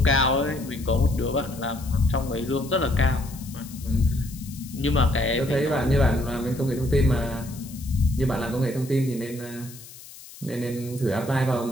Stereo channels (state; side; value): noise; left; hiss, 18 dB below the sound